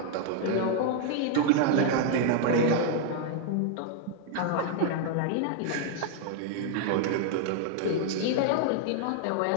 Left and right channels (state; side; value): different; both; correlation 0.00